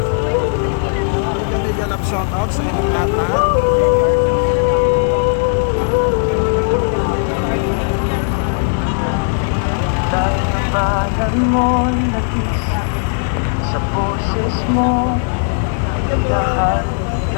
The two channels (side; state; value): right; silent; 67 dB below the other